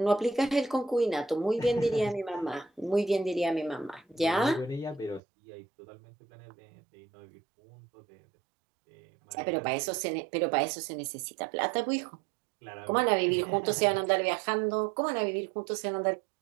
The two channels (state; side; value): drops out; left; at 5.2 s